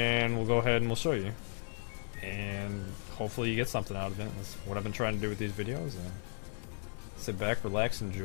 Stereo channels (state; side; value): silent; right; digital silence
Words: we'll go ahead and we'll show you. And hopefully you get something out of it. That's what I've been trying to do with these videos. And sit back, relax,